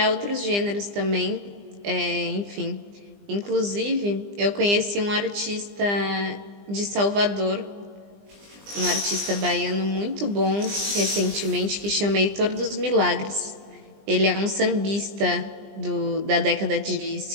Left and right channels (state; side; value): late; left; 20 ms